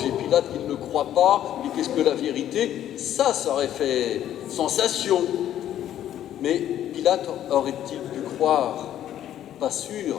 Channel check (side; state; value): right; quieter; 11.4 dB